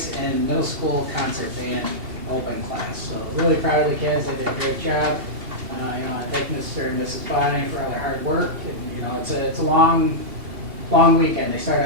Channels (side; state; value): left; late; 2.8 ms